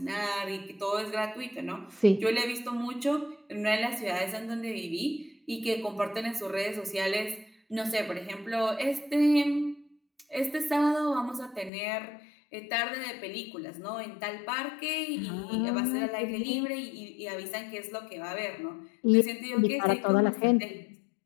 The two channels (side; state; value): right; drops out; at 11.7 s